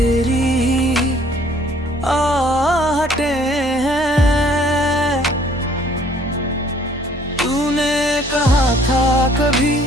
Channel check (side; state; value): both; normal; correlation 0.59